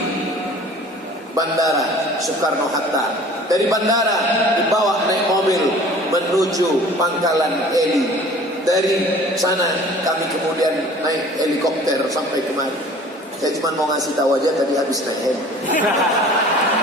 Bandara Soekarno-Hatta. Dari bandara dibawa naik mobil menuju Pangkalan Heli. Dari sana kami kemudian naik helikopter sampai kemari. Saya cuma mau ngasih tahu aja tadi habis naik heli.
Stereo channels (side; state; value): both; normal; correlation 0.47